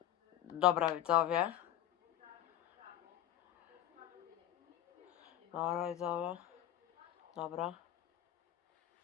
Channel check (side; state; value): right; quieter; 12.2 dB